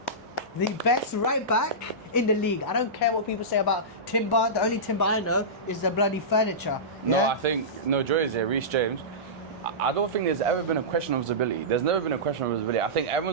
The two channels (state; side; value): normal; both; correlation -0.17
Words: The best right back in the league. I don't care what people say about Timber. The only Timber I know is the bloody furniture. No, yeah? I think Joy is here. Reece James. I don't think there's ever been a question of his ability. There's never been a question of his ability. I think